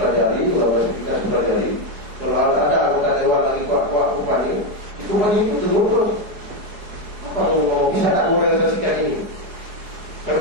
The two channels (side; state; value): left; late; 4.8 ms